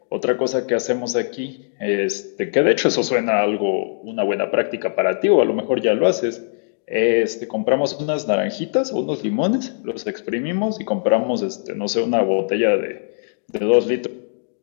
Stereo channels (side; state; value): right; silent; digital silence